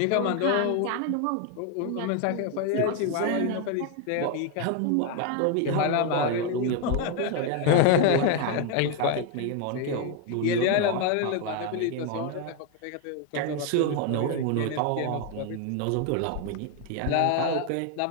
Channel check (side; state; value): both; different; correlation 0.01